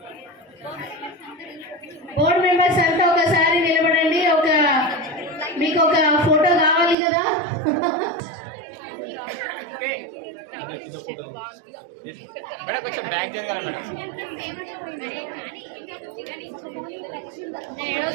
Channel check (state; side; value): drops out; left; at 7.0 s